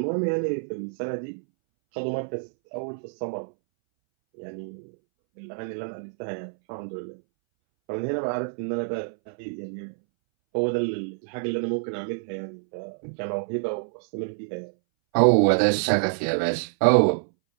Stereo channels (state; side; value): silent; left; 60 dB below the other